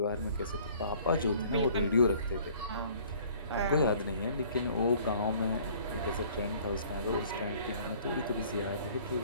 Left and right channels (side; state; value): both; inverted; correlation -0.54